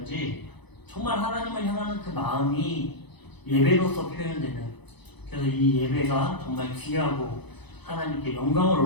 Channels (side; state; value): right; late; 0.99 ms